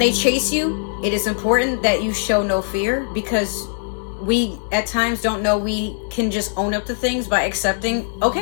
chase you, it is important that you show no fear, because we at times don't know we can just own up to things by accepting,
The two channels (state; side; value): silent; right; 63 dB below the other